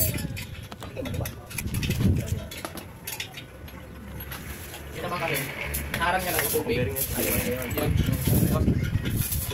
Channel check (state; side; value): identical; both; correlation 1.00